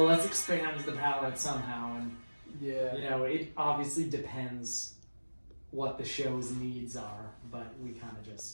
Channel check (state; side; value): inverted; both; correlation -1.00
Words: let's expand the palette somehow, and you know, it obviously depends what the show's needs are, but we kind of